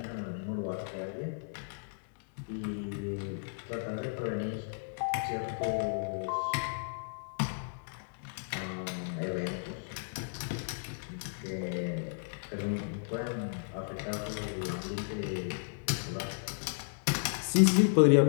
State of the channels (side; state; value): right; silent; digital silence